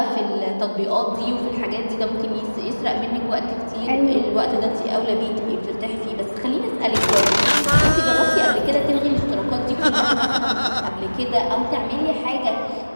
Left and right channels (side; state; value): both; inverted; correlation -1.00